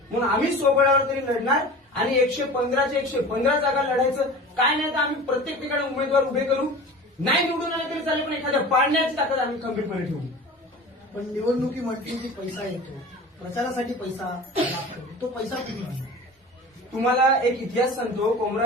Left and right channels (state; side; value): normal; both; correlation 0.37